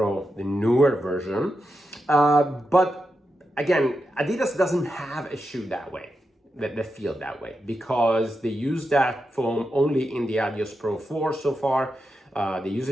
the newer version. But again, Adidas doesn't have a shoe that way, that feel that way, because they use that foam only in the Adios Pro 4 so far. They use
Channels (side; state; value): both; normal; correlation 0.87